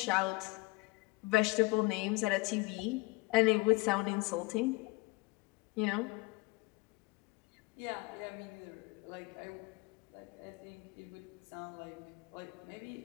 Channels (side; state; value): right; quieter; 24.0 dB